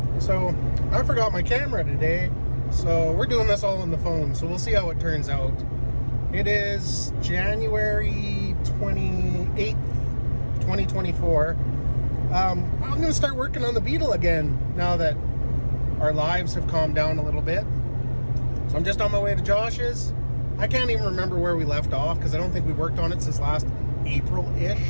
So I forgot my camera today, so we're doing this all on the phone, so we'll see how it turns out. It is January 28th, 2024. I'm going to start working on the Beetle again now that our lives have calmed down a little bit. So I'm just on my way to Josh's. I can't even remember where we left off because I don't think we worked on it since last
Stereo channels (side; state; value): both; inverted; correlation -1.00